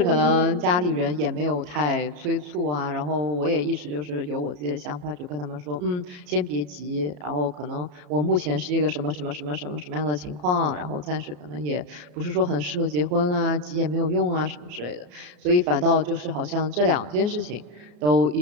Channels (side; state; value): left; late; 34 ms